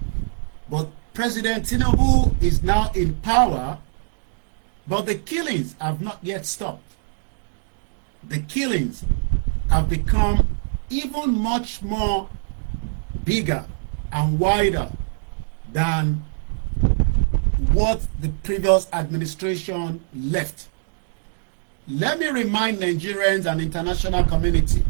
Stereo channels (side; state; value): left; silent; digital silence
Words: But President Tinubu is now in power, but the killings have not yet stopped. The killings have become even much more bigger and wider than what the previous administration left. Let me remind Nigerians and international community